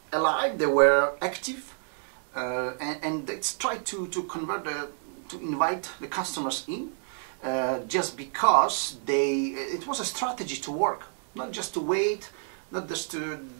alive, they were active, and they tried to convert to invite the customers in, just because it was a strategy to work, not just to wait, not just to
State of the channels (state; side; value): silent; left; 58 dB below the other